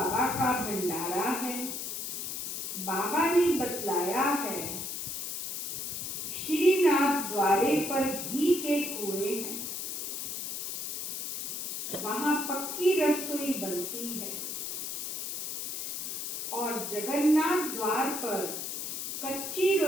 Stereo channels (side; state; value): left; noise; hiss, 4 dB below the sound